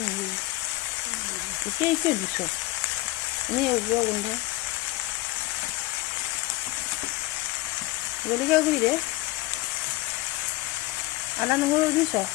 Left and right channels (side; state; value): right; quieter; 19.5 dB